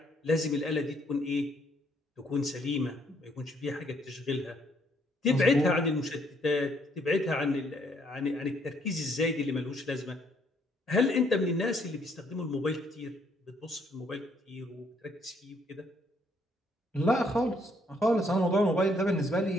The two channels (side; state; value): both; normal; correlation 0.69